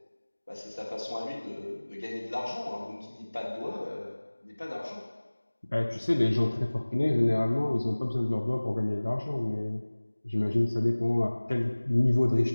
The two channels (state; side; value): inverted; both; correlation -1.00